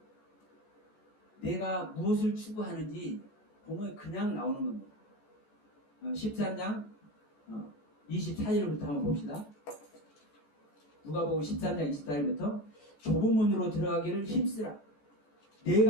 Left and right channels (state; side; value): late; right; 14 ms